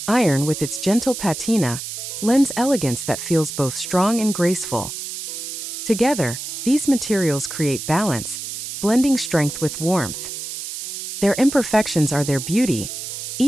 Iron, with its gentle patina, lends elegance that feels both strong and graceful. Together, these materials create balance, blending strength with warmth. Their imperfections are their beauty,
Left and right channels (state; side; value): noise; right; hiss, 7 dB below the sound